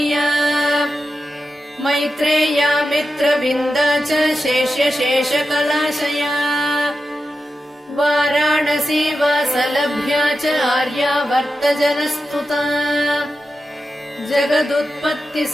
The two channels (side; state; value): both; normal; correlation 0.91